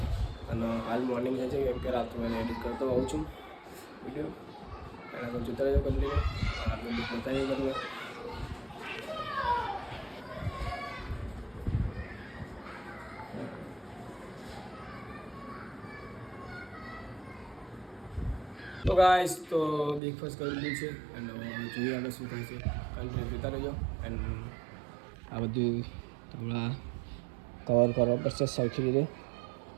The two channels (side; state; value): left; drops out; at 20.0 s